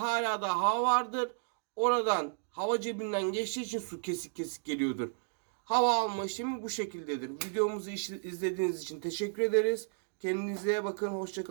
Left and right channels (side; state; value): left; silent; digital silence